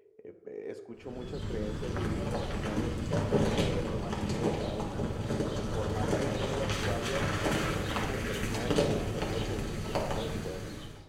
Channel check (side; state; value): both; identical; correlation 1.00